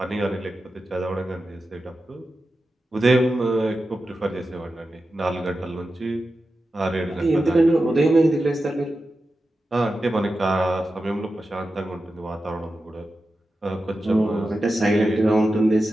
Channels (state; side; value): normal; both; correlation 0.92